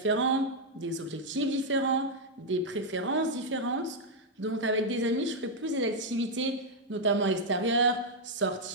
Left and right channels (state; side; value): normal; both; correlation -0.01